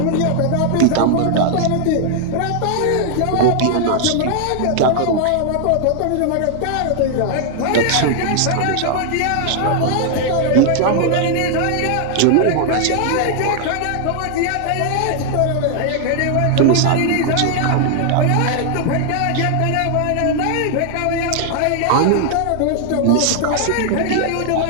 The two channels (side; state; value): both; different; correlation 0.00